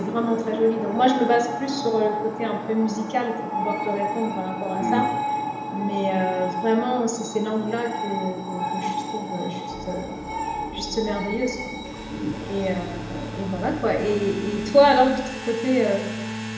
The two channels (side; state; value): both; identical; correlation 1.00